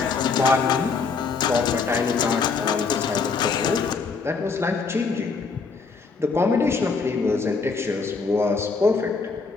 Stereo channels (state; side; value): quieter; right; 4.8 dB